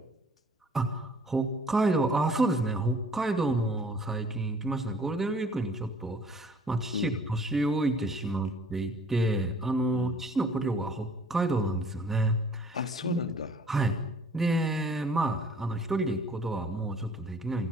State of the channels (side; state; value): both; normal; correlation 0.55